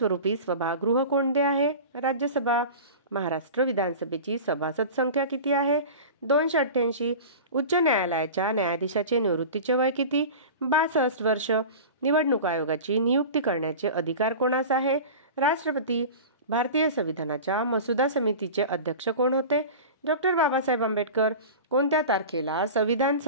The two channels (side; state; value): both; inverted; correlation -0.33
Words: सभागृह कोणते आहे? राज्यसभा. महाराष्ट्र विधानसभेची सभासद संख्या किती आहे? 288. उच्च न्यायालयाच्या न्यायाधीशाचे निवृत्तीचे वय किती? 62 वर्ष. निवडणूक आयोगाची नियुक्ती करण्याचे अधिकार कोणास आहे? राष्ट्रपती. भारतीय संविधानाच्या मसुदा समितीचे अध्यक्ष कोण होते? डॉक्टर बाबासाहेब आंबेडकर. कोणत्या तारखेला संविधान